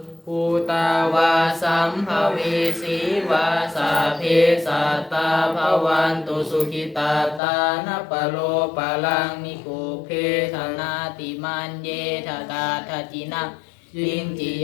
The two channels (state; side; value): drops out; right; at 7.4 s